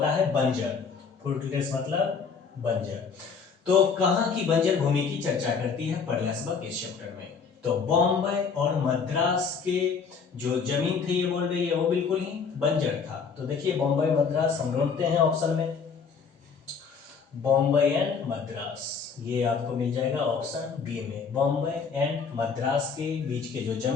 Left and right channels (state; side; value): quieter; right; 5.7 dB